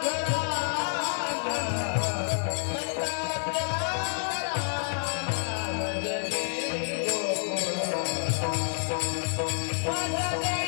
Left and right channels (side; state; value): right; silent; digital silence